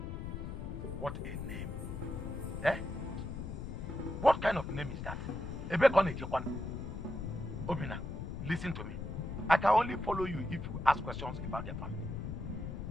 What a name. Eh? What kind of name is that? Obina, listen to me. I can only follow you if you ask questions about their family.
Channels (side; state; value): left; noise; rumble, 6 dB below the sound